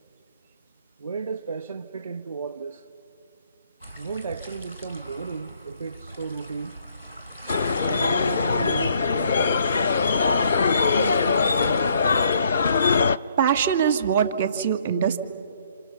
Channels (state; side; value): inverted; both; correlation -0.65